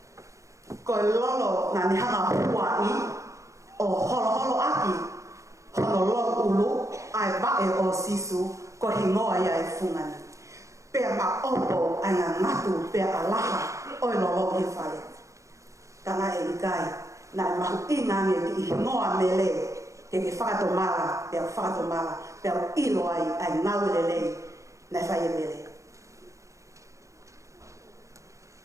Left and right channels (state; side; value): late; left; 0.15 ms